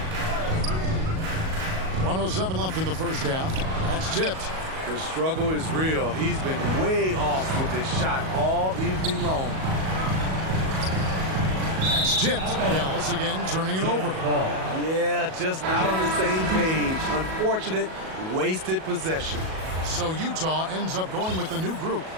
1:07 left in the first half. That's tipped. The struggle is real. He's been way off with his shot all evening long. That's tipped. Dallas again turning it over. Yeah, just not on the same page. Unfortunate, wasted possession. So Utah ends up going with the new group.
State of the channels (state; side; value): late; left; 37 ms